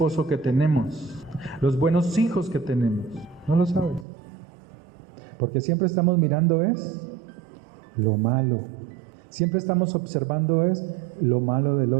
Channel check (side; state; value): left; drops out; at 4.0 s